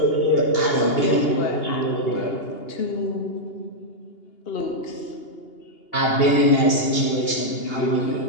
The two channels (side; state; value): right; late; 2.8 ms